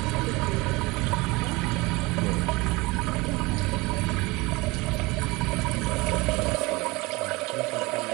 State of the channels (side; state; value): left; quieter; 23.5 dB